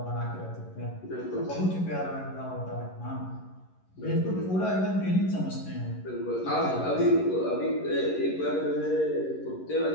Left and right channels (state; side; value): late; right; 11 ms